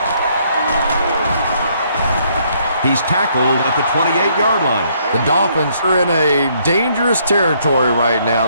He's tackled at the 28-yard line. The Dolphins are in a dangerous territory right now.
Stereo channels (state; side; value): inverted; both; correlation -0.68